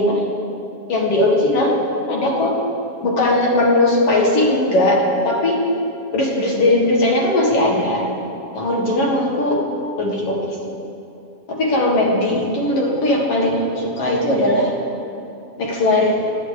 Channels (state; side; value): late; right; 7.3 ms